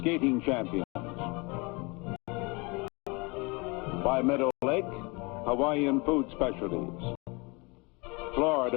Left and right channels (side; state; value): right; quieter; 27.6 dB